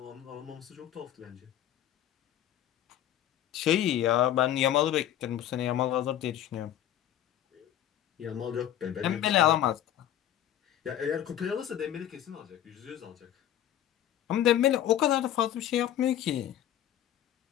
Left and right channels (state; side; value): quieter; right; 11.5 dB